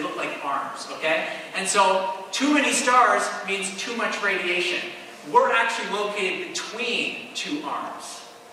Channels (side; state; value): both; identical; correlation 1.00